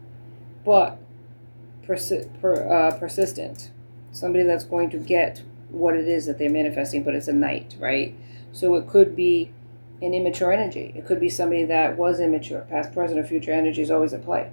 but persistent. Somebody that's going to get what it is that they're manifesting, but it's a Knight, right? So it could be an immature energy. It could be somebody that was immature. Past, present, or future energy is always at play.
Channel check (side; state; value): both; inverted; correlation -1.00